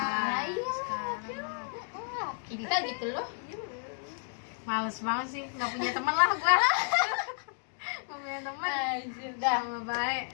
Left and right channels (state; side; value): silent; right; 56 dB below the other